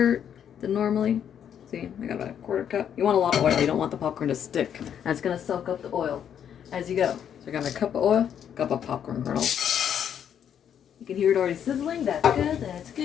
than normally. See, I got about a 1/4 cup. You want a lot of oil. You don't want the popcorn to stick. That's going to soak up the oil as you go. So I got my cup of oil, cup of popcorn kernels. You can hear it already sizzling. That's good. That's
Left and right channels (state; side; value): quieter; right; 8.9 dB